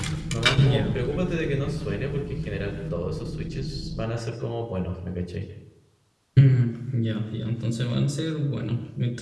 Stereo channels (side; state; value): both; identical; correlation 1.00